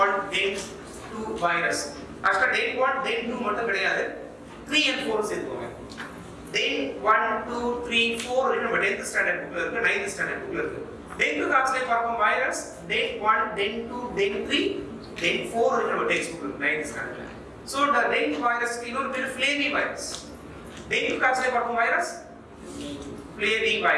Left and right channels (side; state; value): both; identical; correlation 1.00